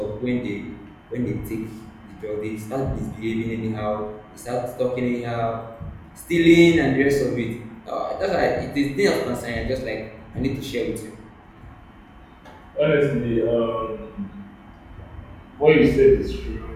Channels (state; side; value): identical; both; correlation 1.00